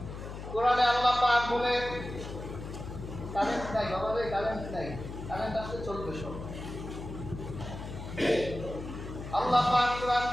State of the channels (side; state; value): left; noise; hum, 9 dB below the sound